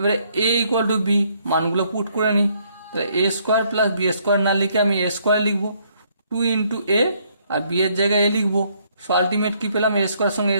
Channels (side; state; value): both; inverted; correlation -0.68